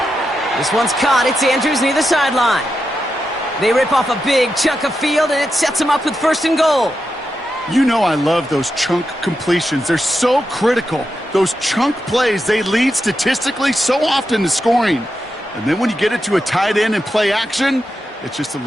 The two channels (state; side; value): normal; both; correlation 0.87